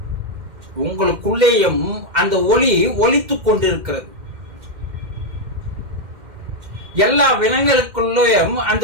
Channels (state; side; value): late; left; 2.1 ms